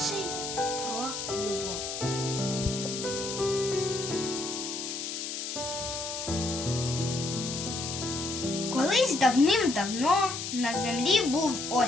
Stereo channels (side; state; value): left; noise; hiss, 5 dB below the sound